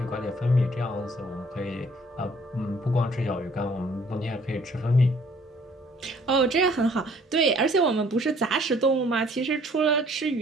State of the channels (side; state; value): both; normal; correlation 0.59